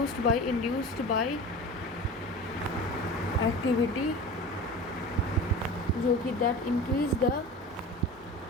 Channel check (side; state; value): both; normal; correlation 0.34